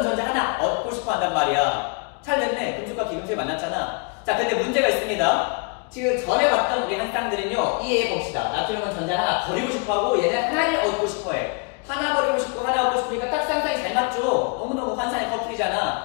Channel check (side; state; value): right; quieter; 34.8 dB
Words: 전자 하나 얻고 싶어한단 말이야. 잘 됐네. 금속과 비금속이 만났잖아. 자, 근데 문제가 있습니다. 지금 전에 봤던 우리 한 쌍들은요, 이해해 봅시다. 나트륨은 전자 하나 버리고 싶어하고 얘는 하나를 얻고 싶어해. 하나 버리고 싶고 하나 얻고 싶으니까 딱 쌍쌍이 잘 맞죠? 너무너무 환상의